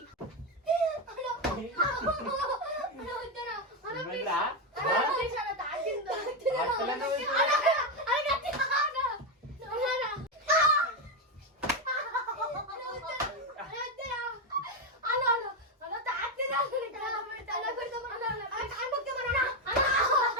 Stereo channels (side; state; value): both; normal; correlation 0.08